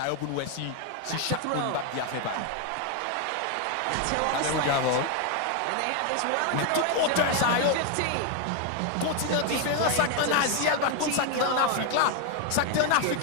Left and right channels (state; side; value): different; both; correlation 0.01